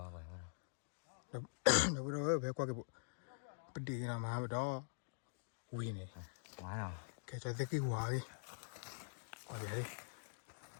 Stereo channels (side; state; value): right; silent; digital silence